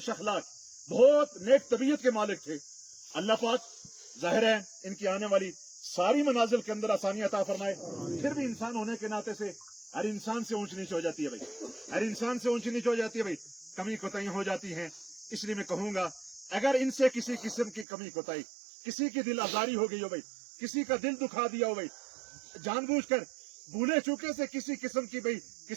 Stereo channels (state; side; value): drops out; left; at 17.9 s